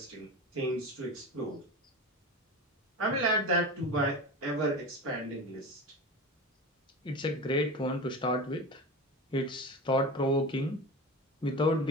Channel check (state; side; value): normal; both; correlation 0.29